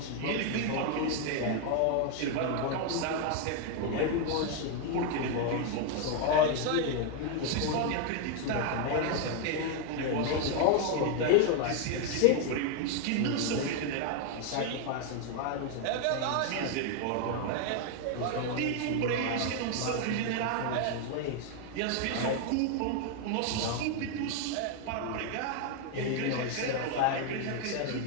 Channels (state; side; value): different; both; correlation 0.01